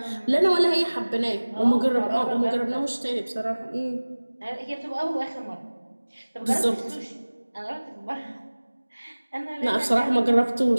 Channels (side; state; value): both; inverted; correlation -1.00